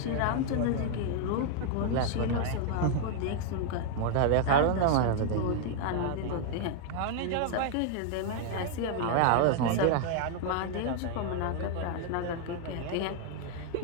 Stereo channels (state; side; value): different; both; correlation 0.00